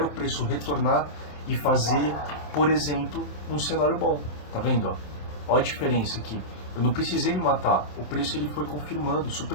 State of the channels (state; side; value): late; right; 27 ms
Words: o preço retornar e fazer, por exemplo, um cenário bom. Tá vendo? Ó a diferença aqui. Eu não precisei me matar, o preço ele foi confirmando,